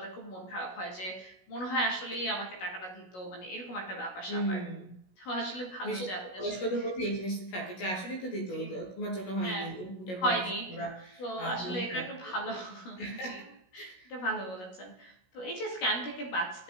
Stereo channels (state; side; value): late; right; 16 ms